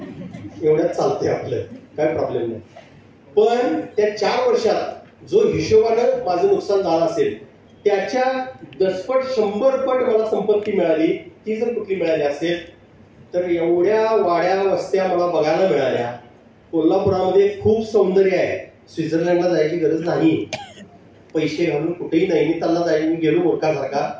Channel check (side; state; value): both; identical; correlation 1.00